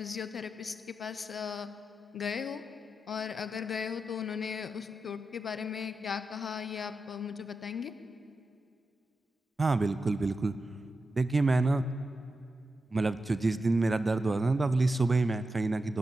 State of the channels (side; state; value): both; normal; correlation 0.89